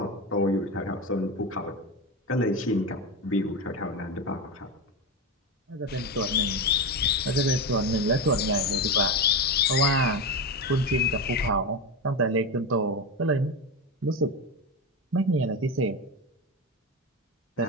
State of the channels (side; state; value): both; normal; correlation 0.17